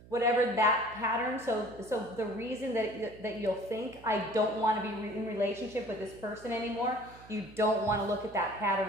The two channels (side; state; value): right; noise; hum, 21 dB below the sound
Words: whatever that pattern, so the reason that you'll think I don't want to be in relationship with this person anymore, you don't want to look at that